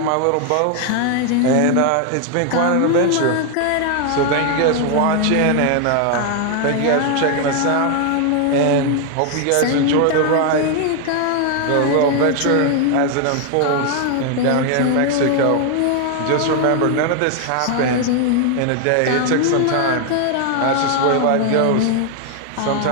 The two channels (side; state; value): both; different; correlation 0.00